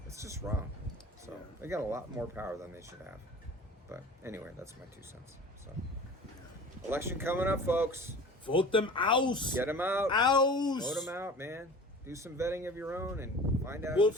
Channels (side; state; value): both; normal; correlation 0.41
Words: It's just wrong. So Yeah. they got a lot more power than they should have. But anyway, that's my 2 cents. So election coming up, folks. Vote them out. Get them out. Out. Vote them out, man. Do some vetting of your own and find out